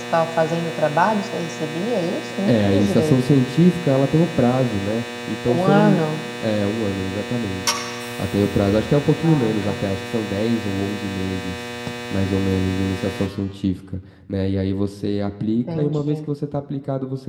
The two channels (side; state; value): both; identical; correlation 1.00